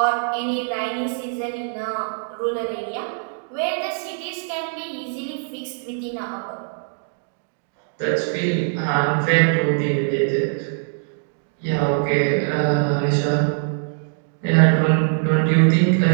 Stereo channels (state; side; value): silent; left; 64 dB below the other